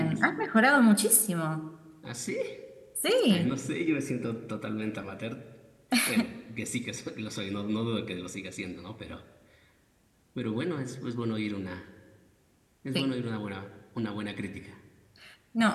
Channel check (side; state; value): both; identical; correlation 1.00